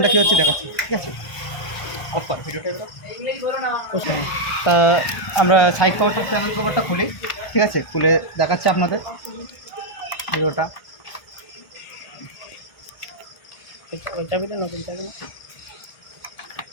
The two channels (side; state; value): right; late; 1.5 ms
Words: কী হচ্ছে দেখাচ্ছি, ঠিক আছে। তা আমরা সাইড কভারটা চ্যানেল কভারটা খুলি, ঠিক আছে, খুলে দেখাচ্ছি আপনাদের ভিডিওটা। নতুন চাবি